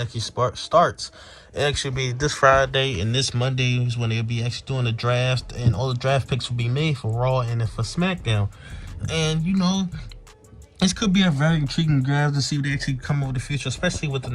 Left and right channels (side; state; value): both; identical; correlation 1.00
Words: starts. It actually be this Friday and this Monday is when they'll be actually doing the draft, and all the draft picks will be made for Raw and for SmackDown. And this could be a very intriguing draft to see what they actually come over the future, especially with the